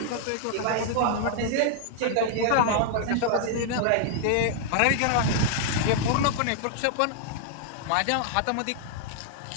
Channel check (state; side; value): different; both; correlation -0.01